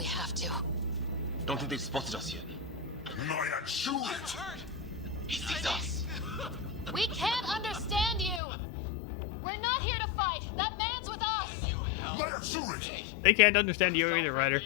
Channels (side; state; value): right; drops out; at 8.4 s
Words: have to. Don't think they've spotted us yet. Shoot it! He sees us! We can't understand you! We're not here to fight! That man's with us! Let her shoot it! They can't understand you either, Ryder.